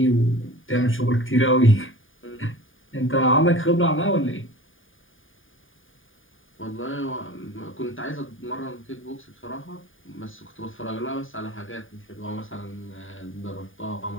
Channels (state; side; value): late; right; 0.58 ms